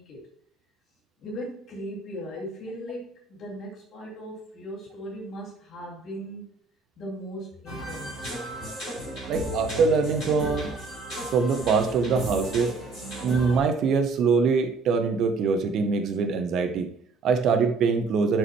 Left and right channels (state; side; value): quieter; left; 4.3 dB